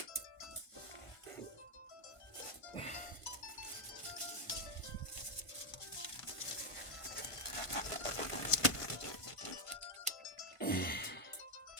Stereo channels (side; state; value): right; late; 1.5 ms